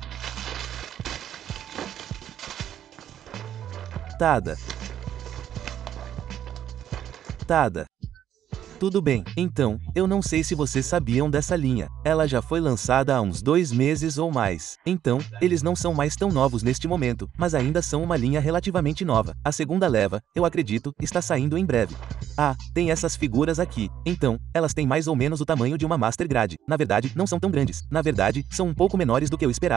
Tada. Tudo bem, então, eu não sei se vocês sabiam dessa linha. Ela já foi lançada há uns 2 meses ou mais. Então, eles não são mais tão novos neste momento, mas ainda são uma linha relativamente nova. A segunda leva, eu acredito, está saindo em breve. Tem essas figuras aqui. Então, elas têm mais ou menos o tamanho de uma Master Grade. Na verdade, não são tão grandes. Na verdade, são um pouco menores do que eu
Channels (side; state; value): left; quieter; 10.5 dB